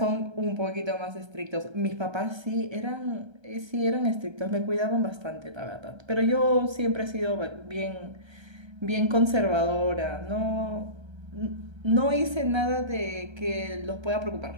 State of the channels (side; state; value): left; late; 1.3 ms